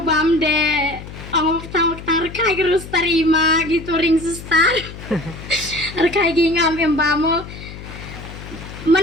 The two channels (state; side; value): noise; left; hum, 13 dB below the sound